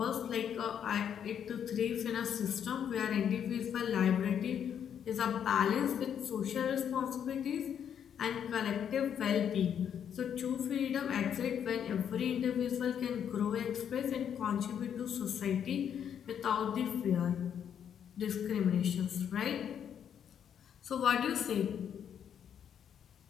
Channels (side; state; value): right; quieter; 8.6 dB